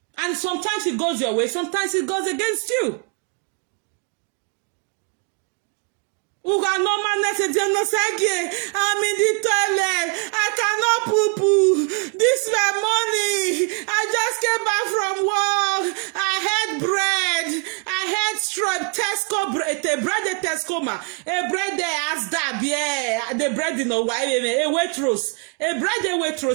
And sometimes it goes your way, sometimes it goes against you. I'm in the toilet. I cannot poo-poo. This is my money. I just came back from work. I had bread. I had strip. Tesco bread. The bread Tesco ma. A bread there as that. Yeah. The bread in a way. A waitress. A bread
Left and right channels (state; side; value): quieter; left; 35.7 dB